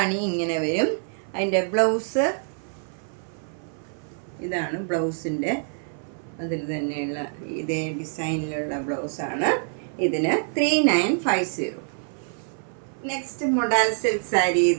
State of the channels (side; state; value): left; silent; 56 dB below the other